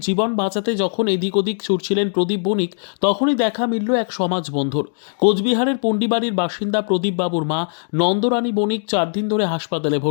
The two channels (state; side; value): silent; right; digital silence